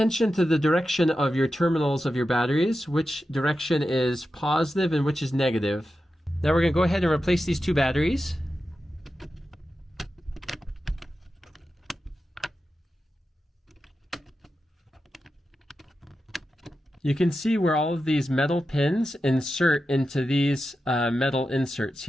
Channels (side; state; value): both; normal; correlation 0.91